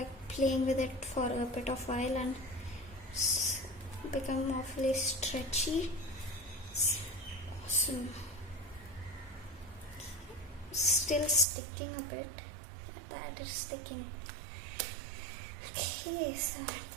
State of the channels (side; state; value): left; drops out; at 11.5 s